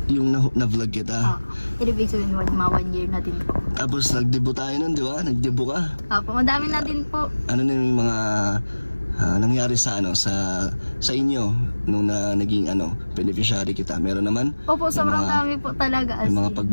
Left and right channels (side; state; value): both; inverted; correlation -1.00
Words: Yung na-vlog kita. Ibig sabihin, mga 1 year na din po. Tapos nag-debut tayo nun, di ba? Nag-debut ka. Opo, madami na din po. Ano na yung mga nangyari sa inyo nung naging beneficiary kita? Meron naman? Opo, sobrang dami po talaga. May mga